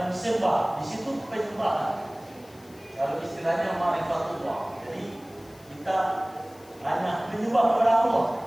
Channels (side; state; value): left; noise; hiss, 25 dB below the sound